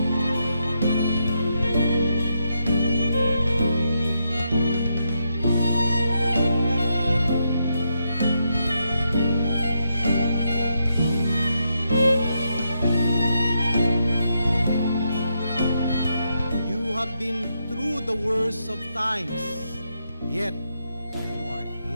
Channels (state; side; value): inverted; both; correlation -0.82